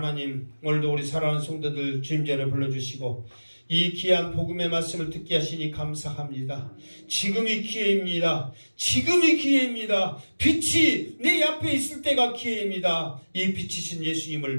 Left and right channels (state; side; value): inverted; both; correlation -1.00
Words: 오늘도 우리 사랑하는 성도들 주님 전에 불러주시고 이 귀한 복음의 말씀을 듣게 하시니 감사합니다. 지금이 기회입니다. 지금이 기회입니다. 빛이 내 앞에 있을 때가 기회입니다. 이 빛이신